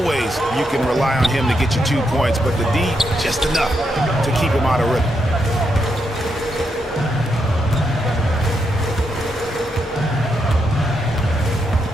you can rely on him to get you 2 points, but the D just enough to keep him out of rhythm.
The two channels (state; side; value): normal; both; correlation 0.81